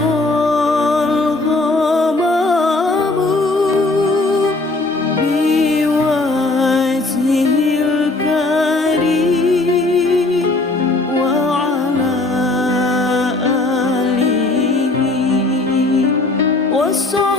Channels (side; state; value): right; quieter; 3.1 dB